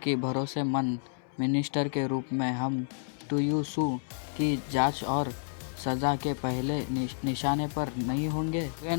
भरोसेमंद मिनिस्टर के रूप में हम तुयुसु की जांच और सजा के पहले निशाने पर नहीं होंगे।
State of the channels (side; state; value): right; silent; 58 dB below the other